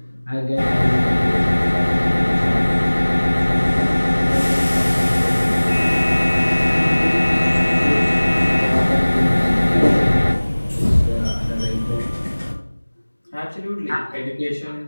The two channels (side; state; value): both; inverted; correlation -1.00